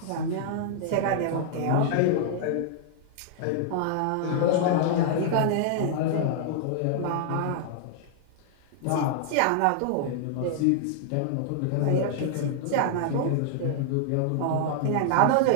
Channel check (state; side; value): different; both; correlation -0.01